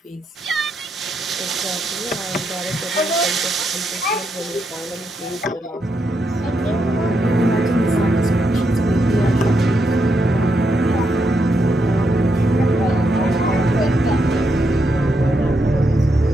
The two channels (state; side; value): normal; both; correlation 0.81